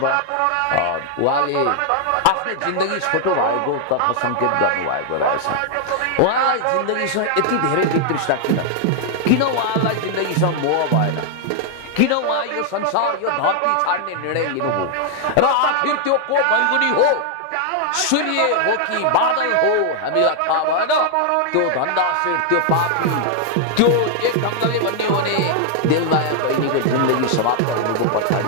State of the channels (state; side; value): different; both; correlation 0.00